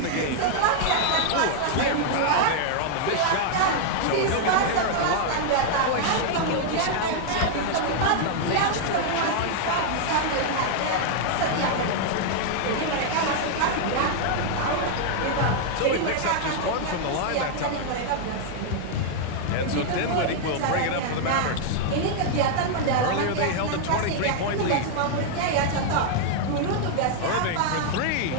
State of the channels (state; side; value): different; both; correlation 0.00